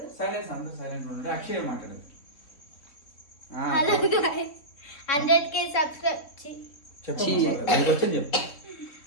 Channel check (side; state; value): right; late; 3.5 ms